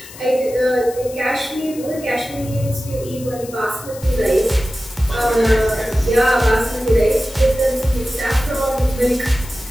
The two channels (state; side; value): noise; left; hiss, 17 dB below the sound